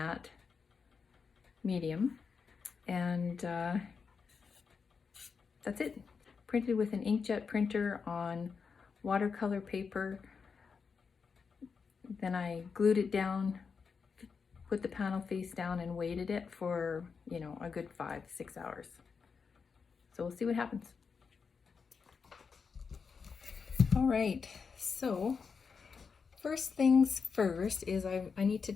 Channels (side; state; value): right; quieter; 5.6 dB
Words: medium, and that's it. Printed with an inkjet printer on watercolor paper. Then I glued it down, put the panel face down, and waited it for, you know, a good 5-6 hours. So we'll see what happens. All right, so first things first is I need to